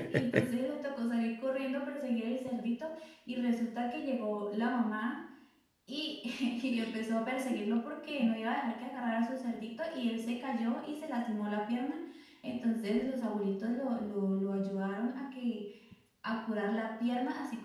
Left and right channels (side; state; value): both; identical; correlation 1.00